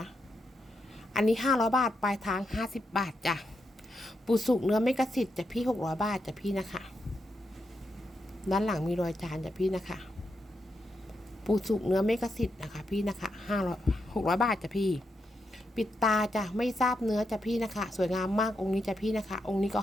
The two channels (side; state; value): both; normal; correlation 0.83